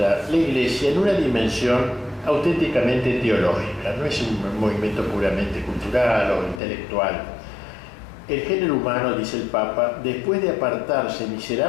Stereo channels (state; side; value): drops out; right; at 6.6 s